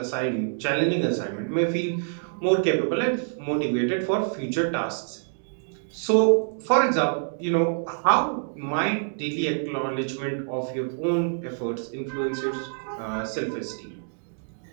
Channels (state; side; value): silent; left; digital silence